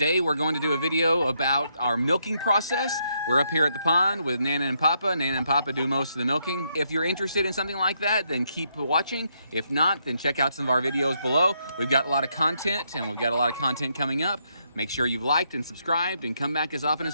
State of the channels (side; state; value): both; inverted; correlation -0.77